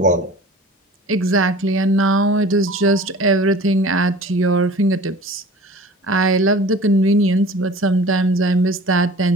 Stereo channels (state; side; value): normal; both; correlation 0.43